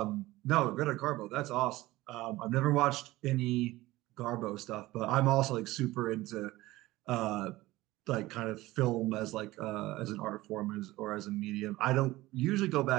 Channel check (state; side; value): quieter; left; 18.2 dB